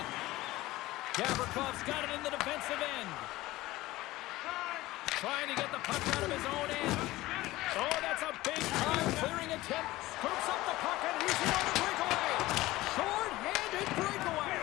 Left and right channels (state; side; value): quieter; right; 18.0 dB